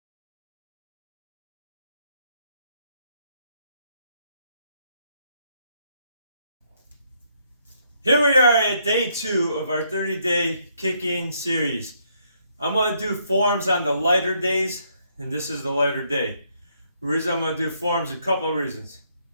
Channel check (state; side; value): inverted; both; correlation -0.72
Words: Here we are at day 2 of our 30-day kicking series. I'm going to do forms on the lighter days, and this is the lighter day. The reason I'm going to do forms, a couple of reasons.